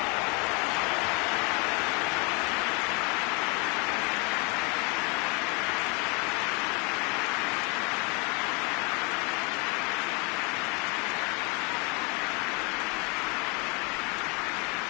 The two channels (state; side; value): quieter; right; 30.7 dB